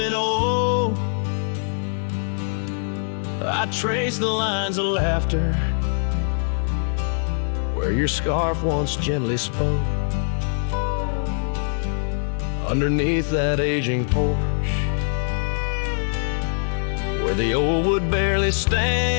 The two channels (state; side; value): silent; right; digital silence